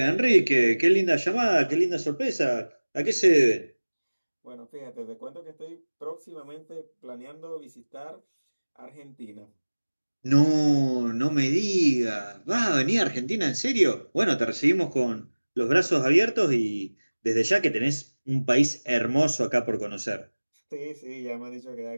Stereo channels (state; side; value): inverted; both; correlation -1.00